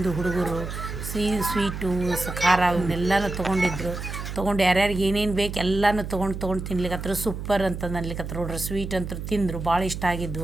ಹುಡುಗರು ಸ್ವೀಟು ಖಾರ ಇವನ್ನೆಲ್ಲನೂ ತೊಗೊಂಡಿದ್ರು. ತೊಗೊಂಡು ಯಾರ್ಯಾರಿಗೆ ಏನೇನು ಬೇಕು ಎಲ್ಲನೂ ತೊಗೊಂಡು ತಿನ್ಲಿಕತ್ರು. ಸೂಪರ್ ಅಂತಂದು ಅನ್ಲಿಕತ್ರು ನೋಡ್ರಿ. ಸ್ವೀಟ್ ಅಂತೂ ತಿಂದರು, ಭಾಳ ಇಷ್ಟ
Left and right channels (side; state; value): right; noise; hum, 7 dB below the sound